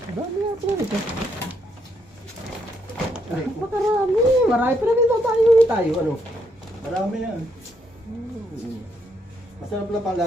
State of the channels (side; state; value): both; normal; correlation 0.75